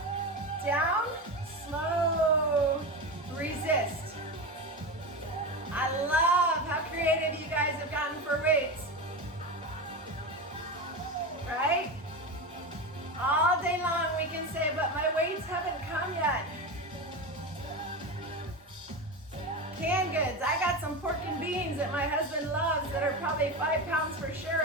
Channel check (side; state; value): both; normal; correlation 0.21